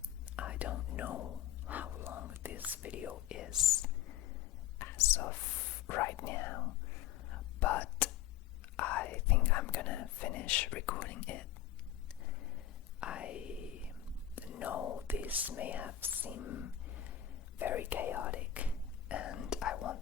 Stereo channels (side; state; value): right; quieter; 11.2 dB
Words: I don't know how long this video is as of right now, but I think I'm gonna finish recording it. I know this may have seemed very chaotic, and I